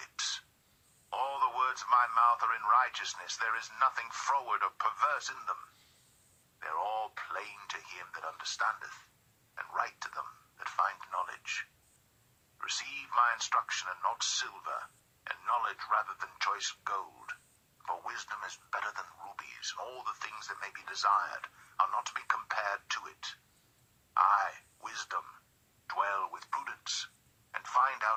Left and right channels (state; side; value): identical; both; correlation 1.00